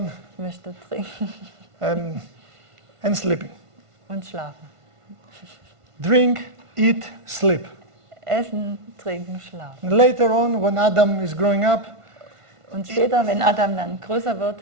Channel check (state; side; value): late; left; 1.5 ms